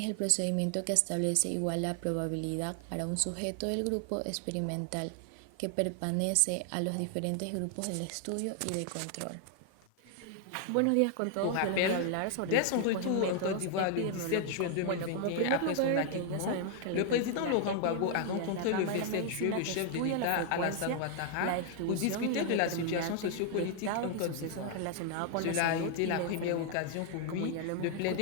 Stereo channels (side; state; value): both; different; correlation 0.00